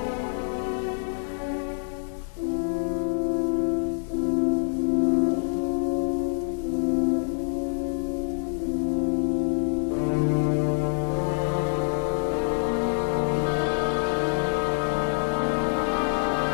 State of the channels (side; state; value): right; silent; 60 dB below the other